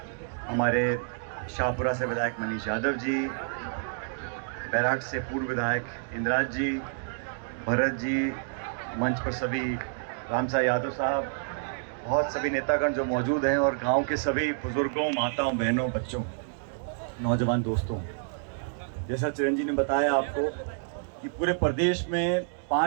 हमारे शाहपुरा से विधायक मनीष यादव जी, बैराट से पूर्व विधायक इंद्राज जी, भरत जी, मंच पर सभी रामसा यादव साहब, बहुत सभी नेतागण जो मौजूद हैं, और गांव के सभी बुजुर्गों, माताओं, बहनों, बच्चों, नौजवान दोस्तों। जैसा चिरंजीव ने बताया आपको कि पूरे प्रदेश में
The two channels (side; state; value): left; silent; digital silence